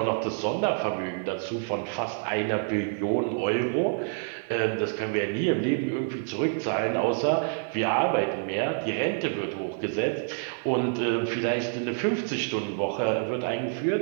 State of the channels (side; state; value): left; silent; 60 dB below the other